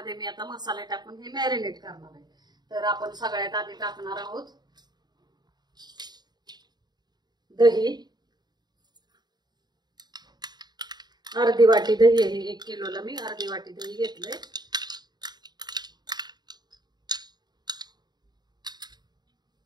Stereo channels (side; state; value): left; late; 0.20 ms